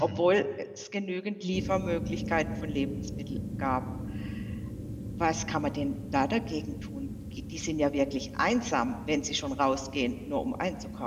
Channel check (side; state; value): both; identical; correlation 1.00